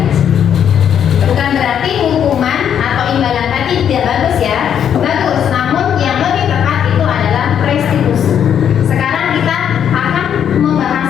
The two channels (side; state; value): right; quieter; 8.8 dB